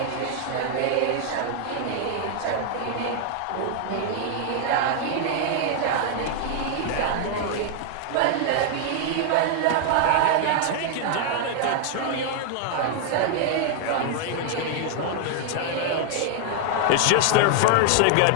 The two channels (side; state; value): both; different; correlation 0.00